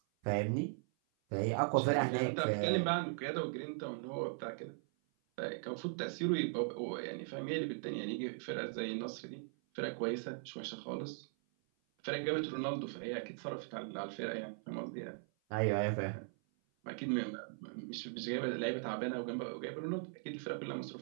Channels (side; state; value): left; silent; 52 dB below the other